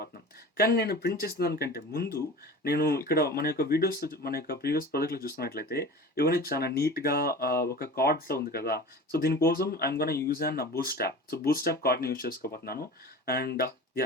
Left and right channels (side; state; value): both; normal; correlation 0.36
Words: కానీ నేను ప్రింట్ చేసిన దానికంటే ముందు నేను ఇక్కడ మన యొక్క వీడియోస్, మన యొక్క ప్రీవియస్ ప్రాజెక్ట్లో చూస్తున్నట్లయితే ఇవన్నీ చాలా నీట్గా ఒక కార్డ్స్లో ఉంది కదా. సో దీనికోసం I'm gonna use an boost app. So boost app కార్డ్ని యూజ్ చేసుకోబోతున్నాను. And